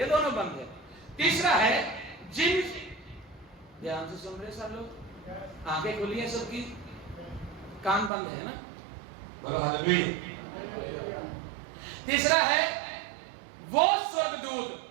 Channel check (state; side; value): drops out; left; at 8.1 s